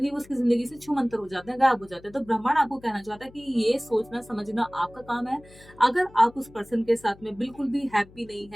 वो उसकी जिंदगी से छूमंतर हो जाते हैं, गायब हो जाते हैं। तो ब्रह्मांड आपको कहना चाहता है कि ये सोचना समझना आपका काम है। अगर आप उस पर्सन के साथ में बिल्कुल भी हैप्पी नहीं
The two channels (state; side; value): noise; left; hum, 23 dB below the sound